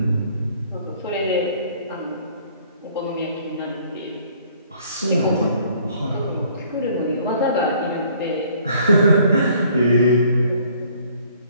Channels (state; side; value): inverted; both; correlation -0.59